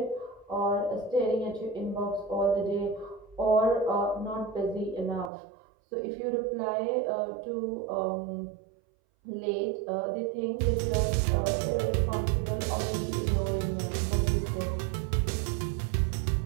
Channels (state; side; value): drops out; left; at 5.3 s